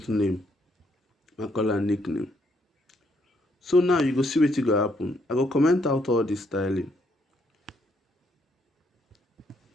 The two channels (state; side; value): normal; both; correlation 0.73